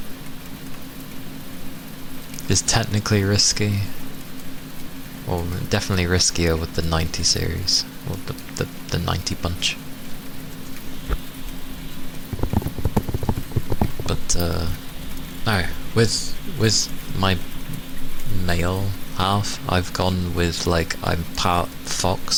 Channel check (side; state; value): both; identical; correlation 1.00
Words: is technically risky, or definitely riskier with the 90 series, or the 90 bunch. But no, with my male half, I've gone with like, I'm part